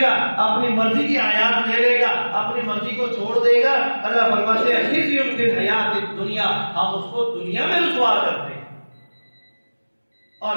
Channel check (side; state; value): both; inverted; correlation -1.00